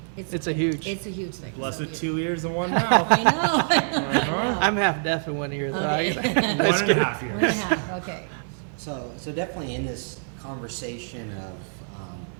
It's a huge thing. Blessed 2 ears and 1 mouth. I know. I know. I'm half deaf in one ear. Okay. 1.5 years. 1.5. Okay. So definitely in this conversation of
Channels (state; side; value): silent; left; 56 dB below the other